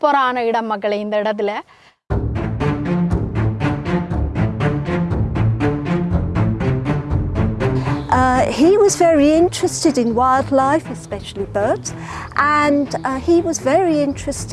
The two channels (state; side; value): identical; both; correlation 1.00